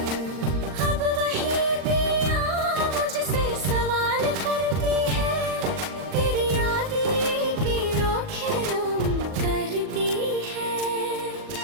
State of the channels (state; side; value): late; left; 39 ms